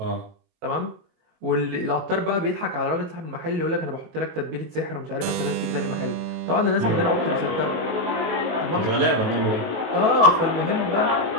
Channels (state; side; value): late; left; 18 ms